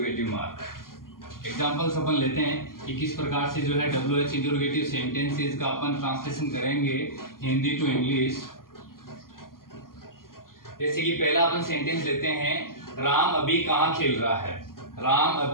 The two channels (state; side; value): late; right; 0.91 ms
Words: मार्क। एग्जांपल्स अपन लेते हैं कि किस प्रकार से जो है WH इंटरोगेटिव सेंटेंसेस का अपन ट्रांसलेशन करेंगे हिंदी टू इंग्लिश। जैसे कि पहला अपन सेंटेंस लेते हैं, राम अभी कहाँ खेल रहा है। राम